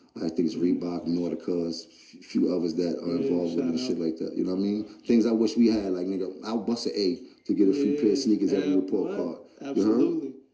I think it's Reebok, Nautica, a few others that are involved with it and shit like that. You know what I mean? Things I wish we had, like, nigga, I'll bust an A to get a free pair of sneakers every report card. Absolutely.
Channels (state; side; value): identical; both; correlation 1.00